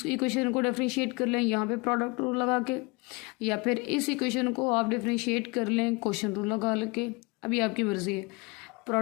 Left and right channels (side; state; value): right; quieter; 27.6 dB